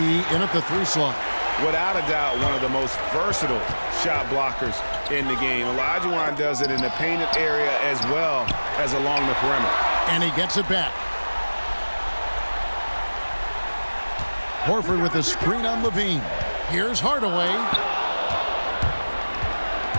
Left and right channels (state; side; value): inverted; both; correlation -1.00